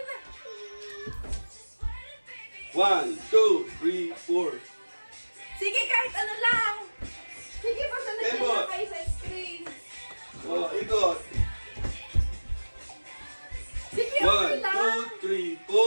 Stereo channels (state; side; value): inverted; both; correlation -1.00